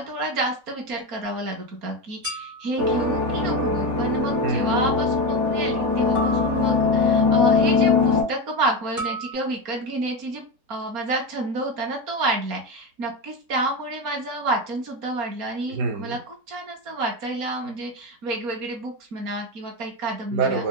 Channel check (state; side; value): late; left; 4.3 ms